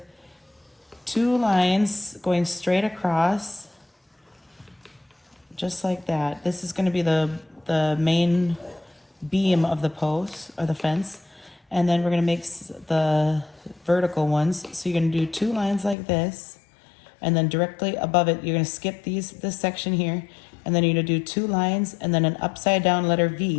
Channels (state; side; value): drops out; right; at 16.0 s